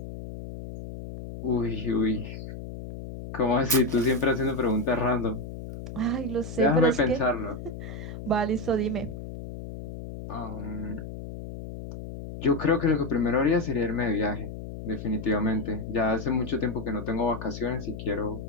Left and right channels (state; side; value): noise; left; hum, 9 dB below the sound